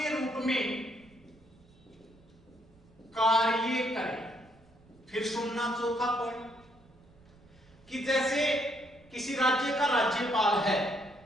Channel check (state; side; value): noise; right; rumble, 27 dB below the sound